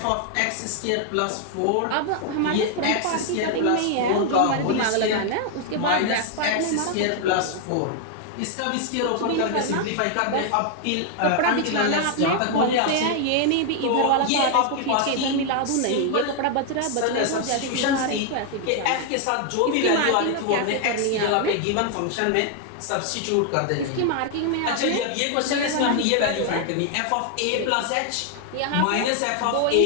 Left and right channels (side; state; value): both; different; correlation 0.00